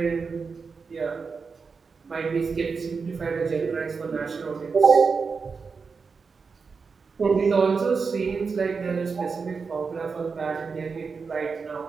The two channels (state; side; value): quieter; left; 5.1 dB